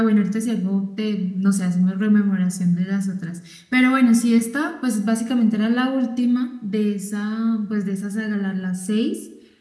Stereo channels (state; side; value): identical; both; correlation 1.00